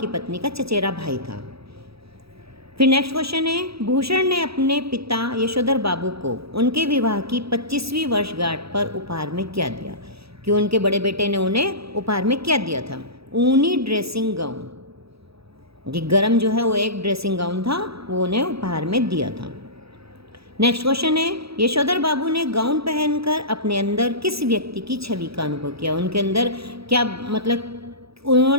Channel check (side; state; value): left; late; 0.77 ms